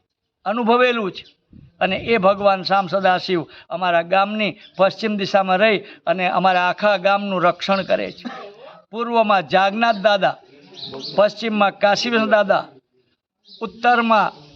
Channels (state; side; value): identical; both; correlation 1.00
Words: અનુભવેલું છે। અને એ ભગવાન શ્યામ સદાશિવ અમારા ગામની પશ્ચિમ દિશામાં રહી અને અમારા આખા ગામનું રક્ષણ કરે છે। પૂર્વમાં જાગનાથ દાદા, પશ્ચિમમાં કાશીવિશ દાદા, ઉત્તરમાં